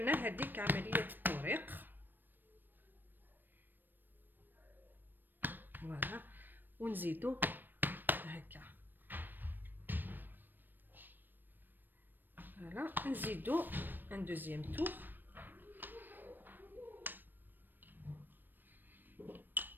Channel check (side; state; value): left; late; 0.092 ms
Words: هذيك عمليه التوريق. فوالا ونزيدو هكا، فوالا نزيدو ان دوزيام تور.